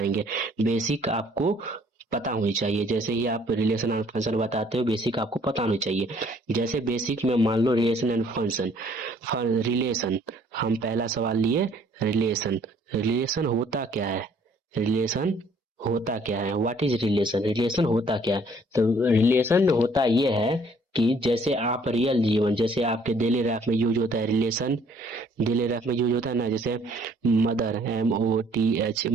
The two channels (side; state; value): both; normal; correlation 0.60